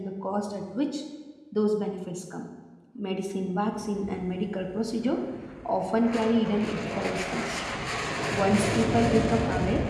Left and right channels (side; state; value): both; identical; correlation 1.00